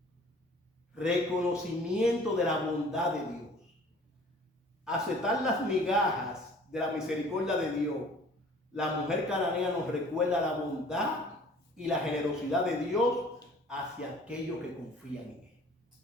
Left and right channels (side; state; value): both; normal; correlation 0.50